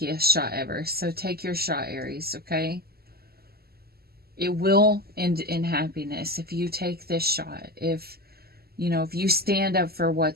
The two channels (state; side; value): late; left; 0.45 ms